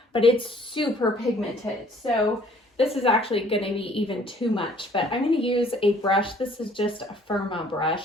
but it's super pigmented. So this is actually going to be even too much, but I'm going to use a brush. This is just a Firma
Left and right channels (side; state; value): both; normal; correlation 0.58